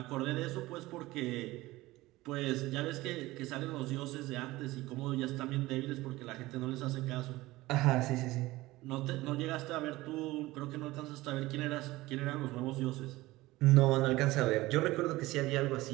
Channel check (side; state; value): left; quieter; 18.8 dB